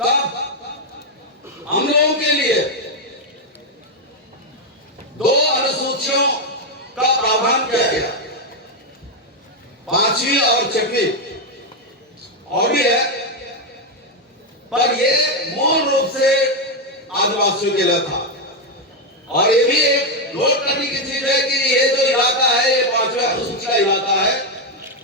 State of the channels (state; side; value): normal; both; correlation 0.04